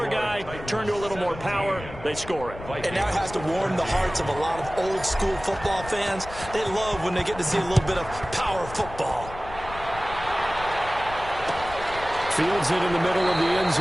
guy. Turned to a little more power. They score it. And now it has to warm the hearts of a lot of old school football fans. They love when they get to see a little bit of power football. Fields it in the middle of the end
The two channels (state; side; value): noise; left; rumble, 13 dB below the sound